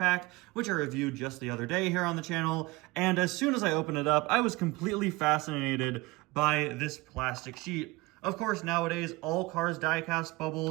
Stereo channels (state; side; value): quieter; left; 21.9 dB